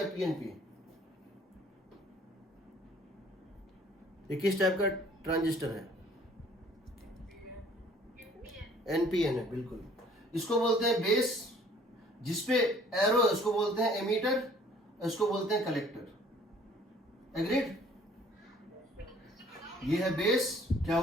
पीएनपी, ये किस टाइप का ट्रांजिस्टर है, एनपीएन है, बिल्कुल। इसको बोलते हैं बेस, जिसपे एरो, इसको बोलते हैं एमीटर, इसको बोलते हैं कलेक्टर। एग्रीड, ये है बेस, क्या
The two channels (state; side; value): normal; both; correlation 0.56